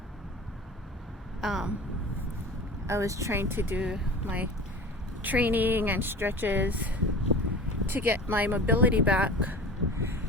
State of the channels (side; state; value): both; normal; correlation 0.36